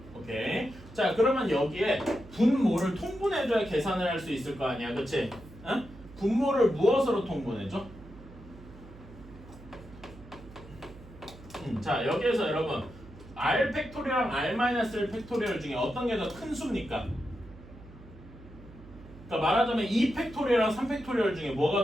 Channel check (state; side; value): noise; right; hum, 19 dB below the sound